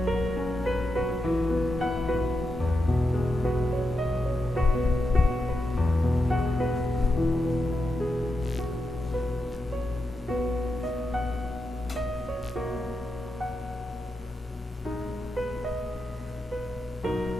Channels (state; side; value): normal; both; correlation 0.87